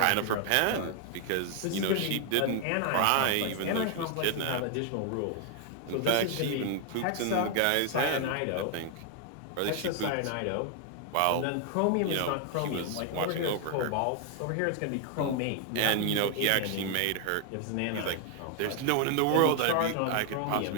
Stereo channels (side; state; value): both; different; correlation 0.00